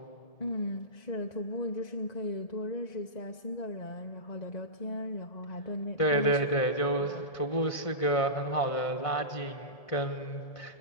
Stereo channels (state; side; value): late; right; 1.7 ms